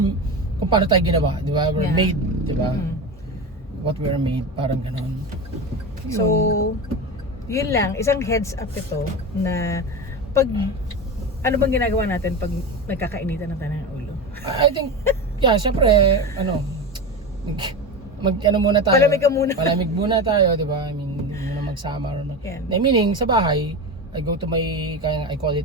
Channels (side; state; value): both; normal; correlation 0.23